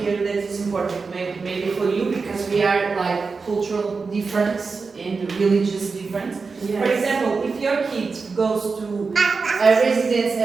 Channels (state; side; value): quieter; left; 4.6 dB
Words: here that is important, maybe for you, because we are like cultural difference and religious difference. Yes. For example, if your kid goes to a residence,